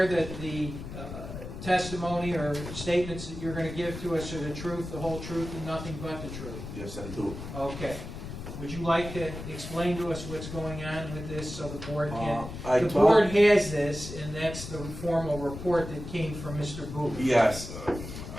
that the testimony or statements that you're going to give to us are the truth, the whole truth, and nothing but the truth? Yes, I do. Okay. Would you like to explain to us what's going on with this so the board can? I The told- board has this, and that's the formal report that came from Mr. Booth. Yes,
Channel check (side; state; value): left; noise; rumble, 9 dB below the sound